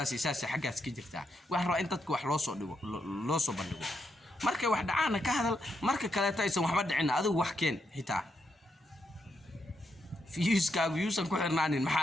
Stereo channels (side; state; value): both; normal; correlation 0.81